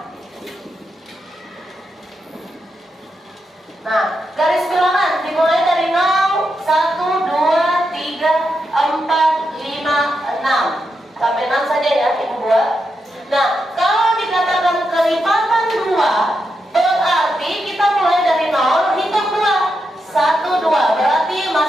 Nah, garis bilangan dimulai dari 0, 1, 2, 3, 4, 5, 6. Sampai 6 saja ya, Ibu buat. Nah, kalau dikatakan kelipatan 2, berarti kita mulai dari 0, hitung 2. 1, 2, berarti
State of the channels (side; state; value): both; normal; correlation 0.85